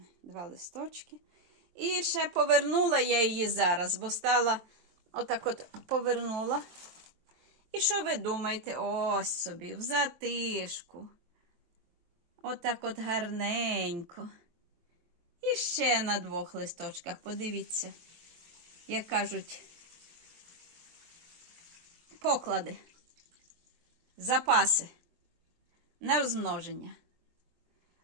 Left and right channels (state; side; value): late; left; 24 ms